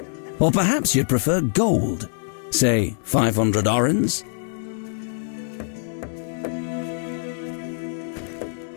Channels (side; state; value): right; silent; digital silence